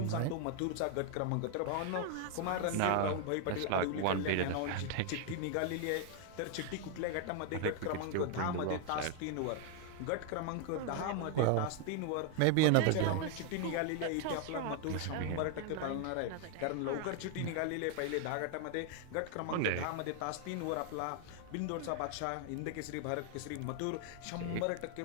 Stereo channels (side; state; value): both; different; correlation 0.00